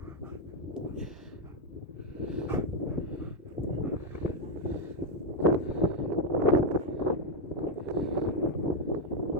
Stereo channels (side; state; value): both; normal; correlation 0.03